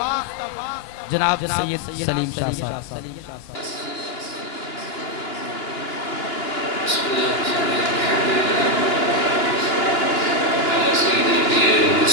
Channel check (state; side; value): late; right; 2.8 ms